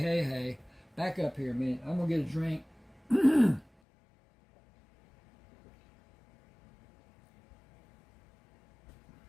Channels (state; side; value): drops out; right; at 3.7 s